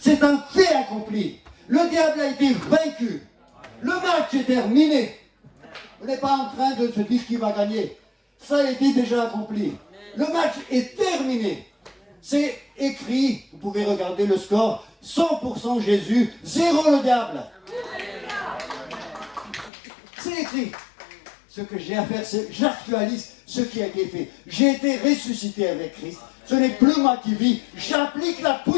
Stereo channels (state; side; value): drops out; right; at 19.7 s